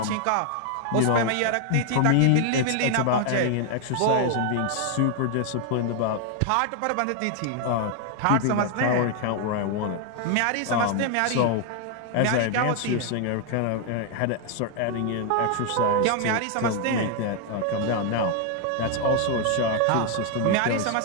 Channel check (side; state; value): both; different; correlation 0.00